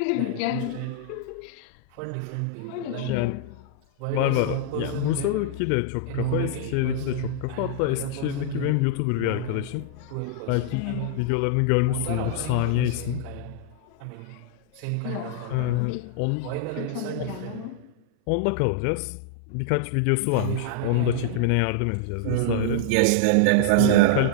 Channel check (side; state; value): both; different; correlation -0.01